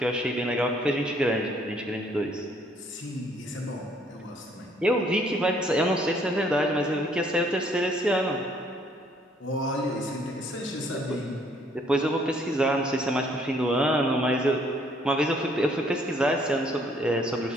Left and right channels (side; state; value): both; normal; correlation 0.64